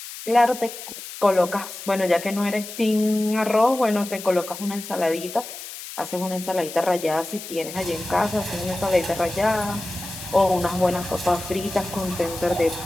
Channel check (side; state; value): left; noise; hiss, 11 dB below the sound